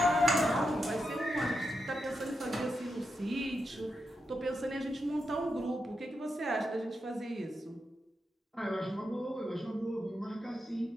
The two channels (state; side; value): normal; both; correlation 0.86